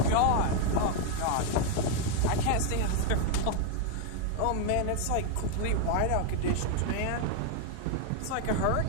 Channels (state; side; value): different; both; correlation 0.01